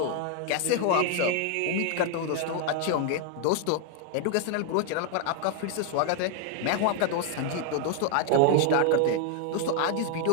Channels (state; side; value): different; both; correlation 0.00